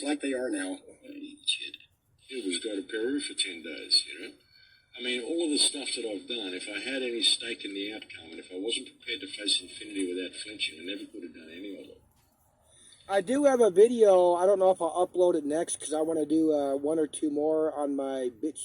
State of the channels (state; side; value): identical; both; correlation 1.00